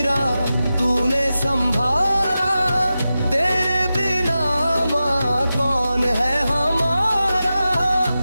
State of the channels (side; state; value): both; inverted; correlation -0.93